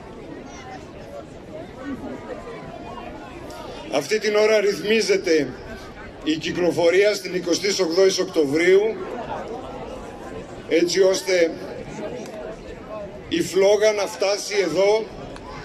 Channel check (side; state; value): both; identical; correlation 1.00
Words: Αυτή την ώρα ρυθμίζεται η κυκλοφορία στην 28η Οκτωβρίου, έτσι ώστε η φλόγα να φτάσει εδώ